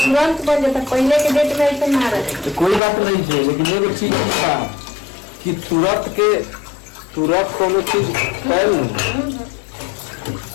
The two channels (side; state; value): right; drops out; at 2.8 s